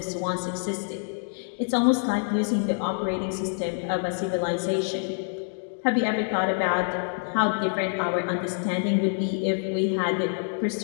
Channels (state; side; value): silent; right; digital silence